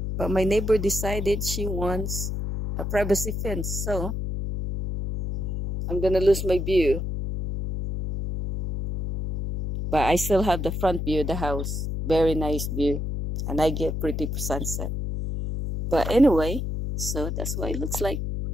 but my neighbor decided she wants a privacy fence, so I'm gonna lose my view. But I still have the front view of the house. Very nice view, and I get pretty sunset. But anyway, so that's what it looks like.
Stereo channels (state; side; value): noise; left; hum, 3 dB below the sound